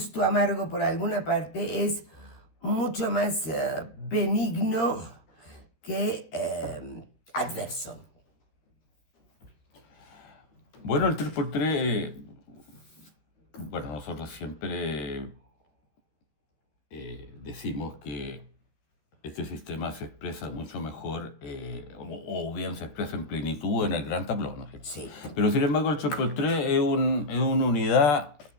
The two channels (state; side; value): late; right; 13 ms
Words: amargo por alguna parte, es mucho más benigno que adverso. Bueno, el 3x3, bueno, nosotros siempre decimos que este sistema se expresa mucho mejor, o bien se expresa en plenitud en el gran tablón, ¿no es cierto? Sí. Pero sin embargo el 3x3 es una unidad